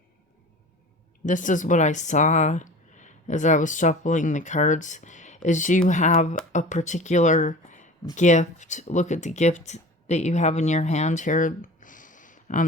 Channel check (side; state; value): both; normal; correlation 0.38